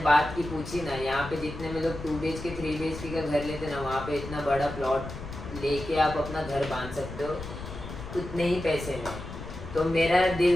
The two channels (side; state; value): left; noise; rumble, 10 dB below the sound